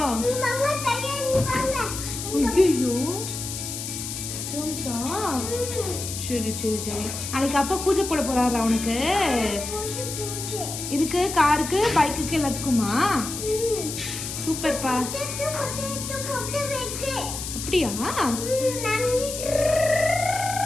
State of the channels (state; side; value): noise; left; hiss, 6 dB below the sound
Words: மாமா கையை வாங்க. ஐயோ ஜாம்ஸா? சரி சரி சரி. நாளைக்கு அப்பா பூஜை போட போறாரா உனக்கு? பூஜை. இதுக்கு காருக்கு பைக்குக்கு எல்லாத்துக்குமா? சூப்பர்ப்பா. அப்படியா?